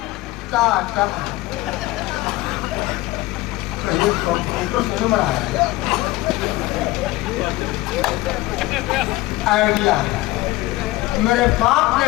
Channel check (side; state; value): right; quieter; 18.7 dB